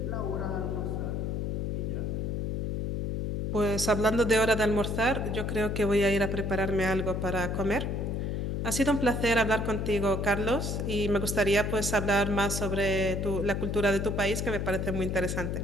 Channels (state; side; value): noise; left; hum, 1 dB below the sound